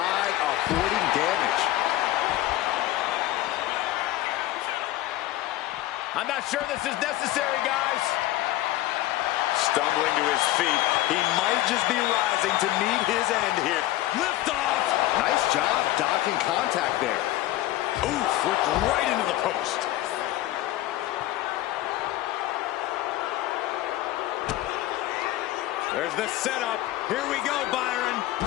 avoiding damage. I'm not sure this is necessary, guys. Stumbling to his feet. He might just be rising to meet his end here. Lift off. Nice job dodging contact there. Oof, flipped right into the post. There's the setup. Here we go, Byron.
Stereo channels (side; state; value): right; quieter; 15.5 dB